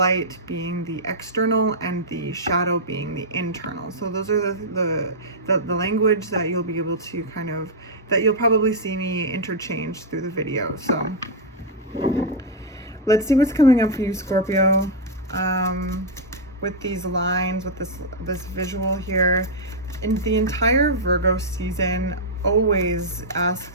being the external and the shadow being the internal. So those are the language that you'll be able to kind of, that you'll probably see me interchange through the video. So let's see what's coming up for you, Scorpio, with these lines, with this visual here. In the entire Virgo season always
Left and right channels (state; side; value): normal; both; correlation -0.05